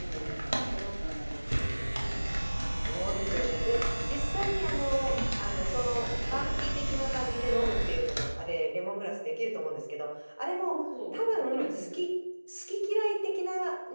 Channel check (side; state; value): both; inverted; correlation -1.00